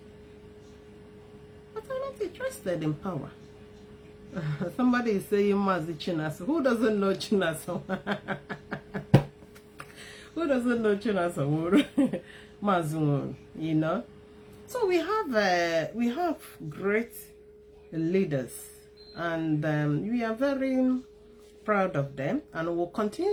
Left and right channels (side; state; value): both; identical; correlation 1.00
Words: are not interested in power. Somebody is saying Mazi Chinaso. Who doesn't know Chinaso? Who doesn't know Chinaso? Mazi, you know. So we have great leaders, and we are very proud of them, and will